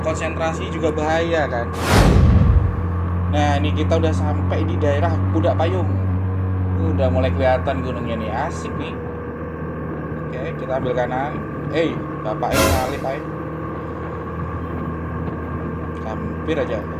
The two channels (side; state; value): both; identical; correlation 1.00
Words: konsentrasi juga bahaya kan. Nah, ini kita udah sampai di daerah Pudak Payung. Udah mulai kelihatan gunungnya nih, asik nih. Oke, kita ambil kanan. Bapak salip aja. Hampir aja.